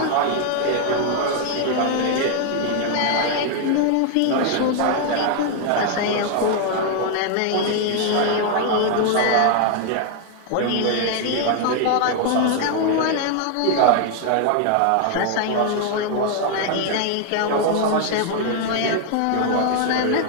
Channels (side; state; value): both; different; correlation 0.00